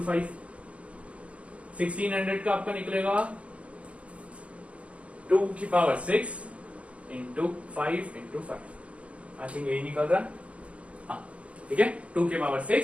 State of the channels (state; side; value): late; left; 0.063 ms